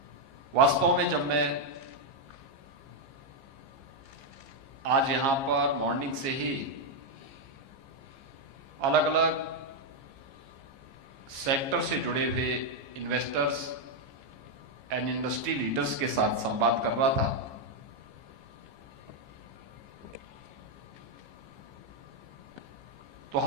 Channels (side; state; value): left; late; 15 ms